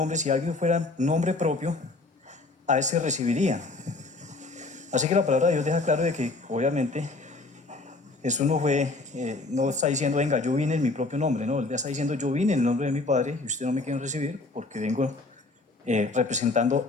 si alguien fuera nombre propio, a ese recibirían. Así que la palabra de Dios deja claro de que obviamente Jesús no está diciendo: venga, yo vine en mi propio nombre. No, él está diciendo: yo vine en el nombre de mi Padre y ustedes no me quieren recibir porque vengo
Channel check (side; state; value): right; quieter; 3.3 dB